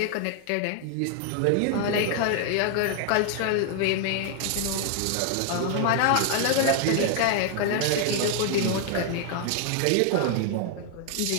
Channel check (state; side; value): different; both; correlation 0.00